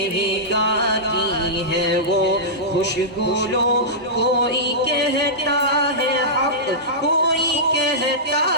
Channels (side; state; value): both; normal; correlation -0.14